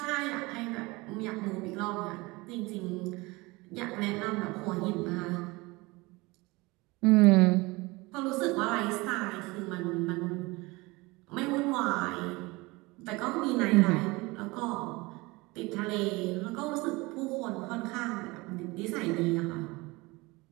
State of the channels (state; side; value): quieter; left; 23.4 dB